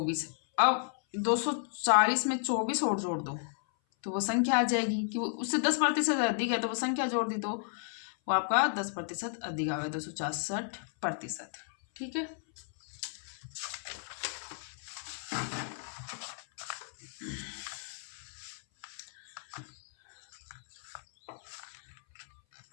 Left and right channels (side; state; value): right; silent; 56 dB below the other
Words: अब 240 में 24 और जोड़ दो तो वो संख्या आ जाएगी कि वो उससे 10% अधिक है, तो वो संख्या जोड़ दी तो वो आपका 10% अधिक आ गया 266%। ठीक है,